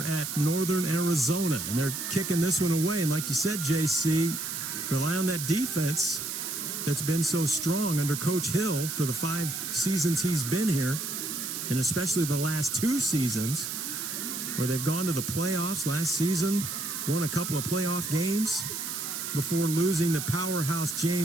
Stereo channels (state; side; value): noise; right; hiss, 4 dB below the sound